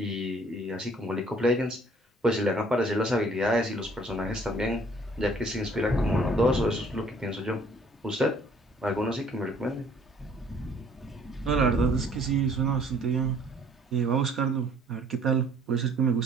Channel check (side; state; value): both; normal; correlation 0.58